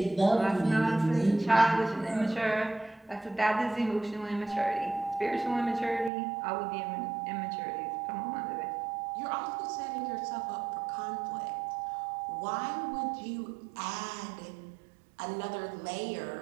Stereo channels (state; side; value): drops out; left; at 6.1 s